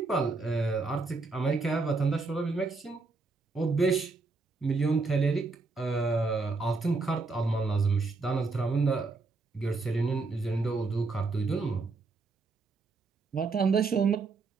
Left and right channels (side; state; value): left; quieter; 3.9 dB